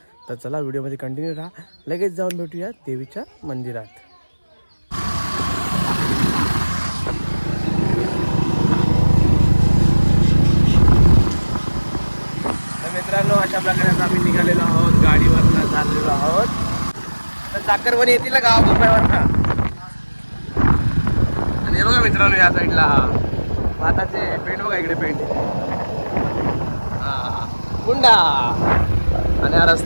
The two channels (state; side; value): inverted; both; correlation -1.00